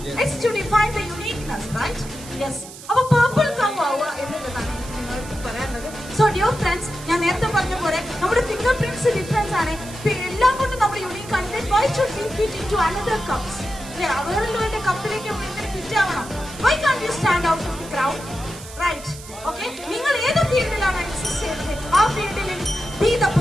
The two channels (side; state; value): right; noise; hiss, 16 dB below the sound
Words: It's to define the uniqueness, right? Yes. അപ്പൊ purple cow ആവുക എന്നുള്ളതാണ് നിങ്ങൾക്ക് പറയാനുള്ളത്. So dear friends, ഞാൻ നേരത്തെ പറഞ്ഞ പോലെ നമ്മുടെ ഫിംഗർ പ്രിന്റ്സ് ഡിഫറൻസ് ആണ്. എല്ലാം കൊണ്ടും നമ്മൾ യൂണിക് ആണ്. Why should we fit into another cups? അവരുടെ കപ്പിലേക്ക് ഫിറ്റ് ആവണം. Why can't you stand out from the crowd? Right? Okay? നിങ്ങൾ ഏത് ഫീൽഡിലാണ് എക്സിസ്റ്റ് ചെയ്യുന്നത് ആ ഫീൽഡിൽ be the